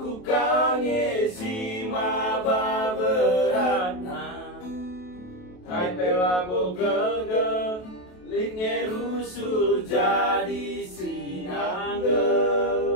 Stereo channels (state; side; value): late; right; 28 ms